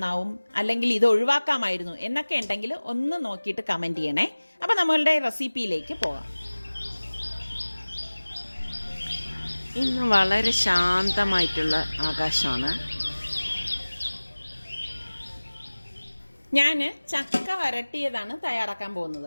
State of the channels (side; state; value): both; inverted; correlation -1.00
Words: അല്ലെങ്കിൽ ഇത് ഒഴിവാക്കാമായിരുന്നു എന്നൊക്കെ ഉണ്ടെങ്കിൽ ഒന്ന് നോക്കിയിട്ട് കമൻറ്റ് ചെയ്യണേ. അപ്പോൾ നമ്മളുടെ റെസിപ്പിയിലേക്ക് പോകാം. ഇന്ന് വളരെ ശാന്തമായിട്ടുള്ള ആകാശമാണ്. ഞാൻ ചക്ക വരട്ടിയതാണ് തയ്യാറാക്കാൻ പോകുന്നത്.